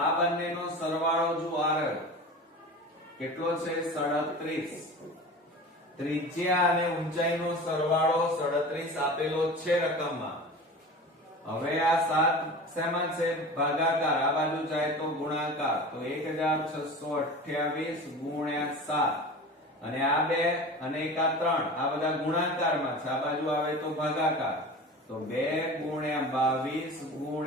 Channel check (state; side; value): normal; both; correlation 0.35